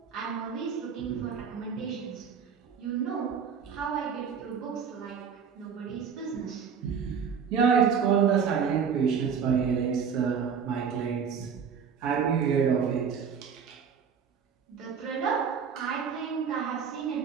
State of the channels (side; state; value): left; quieter; 6.8 dB